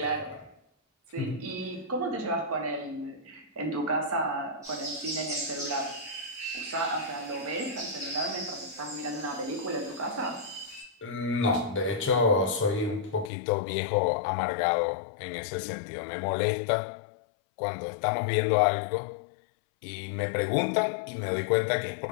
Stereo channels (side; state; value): right; drops out; at 13.3 s